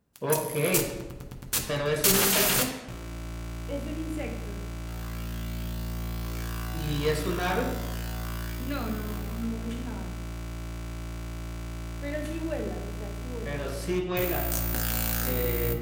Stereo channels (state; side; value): identical; both; correlation 1.00